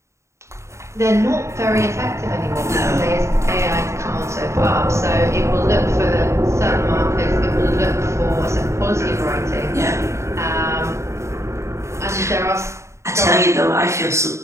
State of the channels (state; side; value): late; left; 0.14 ms